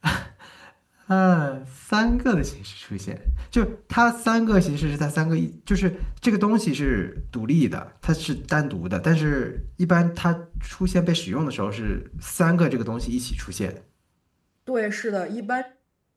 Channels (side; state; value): both; identical; correlation 1.00